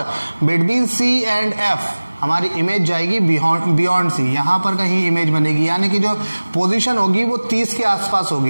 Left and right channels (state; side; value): inverted; both; correlation -1.00